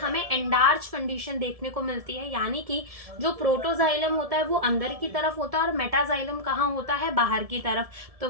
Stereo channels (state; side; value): late; left; 1.7 ms